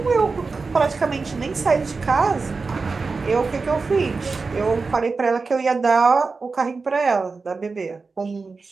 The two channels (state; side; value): quieter; left; 4.3 dB